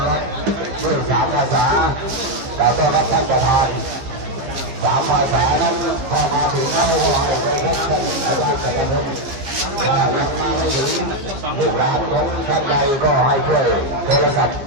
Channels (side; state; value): left; late; 15 ms